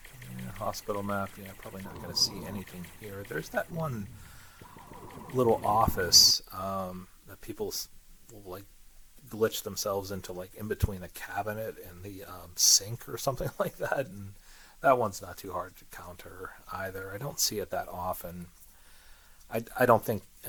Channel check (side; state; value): both; identical; correlation 1.00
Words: Hospital map. Yeah, probably not going to see anything here. There's that one little office that people will like glitch themselves into, like in between the cabinet and the sink or something like that, and that one's not too hard to counter either. I don't see it that often. I don't think.